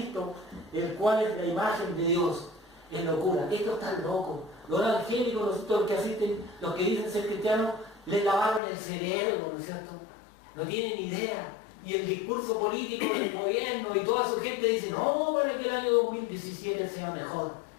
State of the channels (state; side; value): drops out; right; at 8.6 s